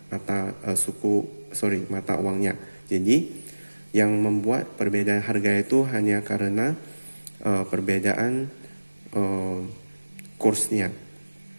mata uangnya. Jadi yang membuat perbedaan harga itu hanya karena perbedaan kursnya.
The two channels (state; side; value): inverted; both; correlation -1.00